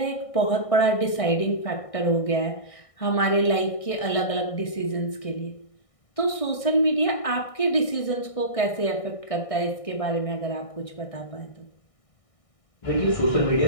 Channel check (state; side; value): late; right; 1.6 ms